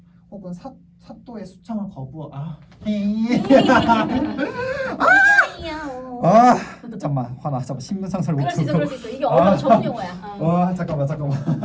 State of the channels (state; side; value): identical; both; correlation 1.00